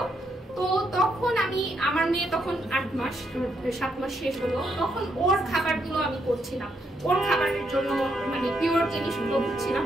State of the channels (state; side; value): normal; both; correlation 0.77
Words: তো তখন আমি, আমার মেয়ে তখন 7 মাস শেষ হলো, তখন ওর খাবারগুলো আমি করছিলাম, ওর খাবারের জন্য মানে পিওর জিনিসগুলো বুঝছিলাম।